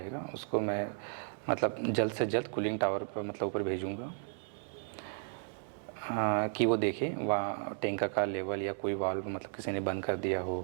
उसको मैं मतलब जल्द से जल्द कूलिंग टावर पर मतलब ऊपर भेजूँगा कि वो देखे वहाँ टैंक का लेवल या कोई वाल्व मतलब किसी ने बंद कर दिया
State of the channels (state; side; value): silent; left; 55 dB below the other